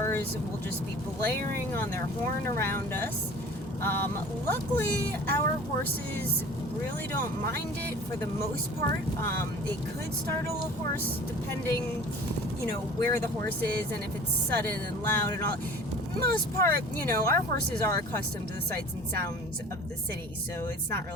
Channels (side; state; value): both; normal; correlation 0.44